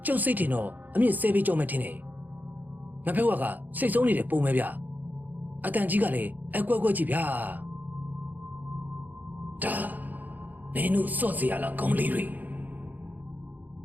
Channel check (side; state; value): left; late; 0.084 ms